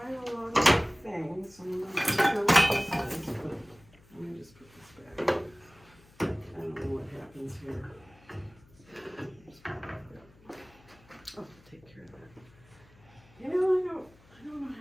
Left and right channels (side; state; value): left; noise; hum, 27 dB below the sound